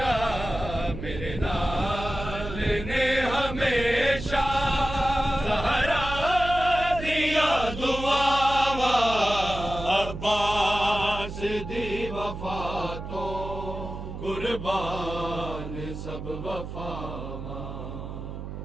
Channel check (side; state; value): right; noise; hum, 8 dB below the sound